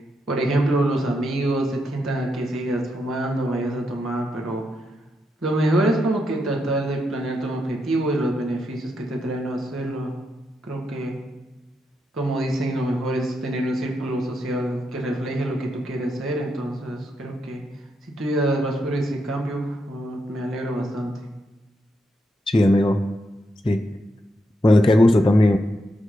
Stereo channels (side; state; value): both; normal; correlation 0.82